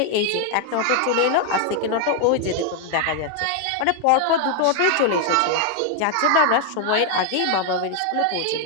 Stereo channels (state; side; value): different; both; correlation 0.01